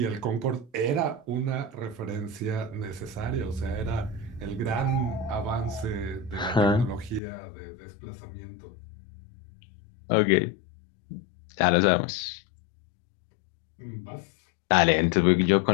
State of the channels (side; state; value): right; drops out; at 7.2 s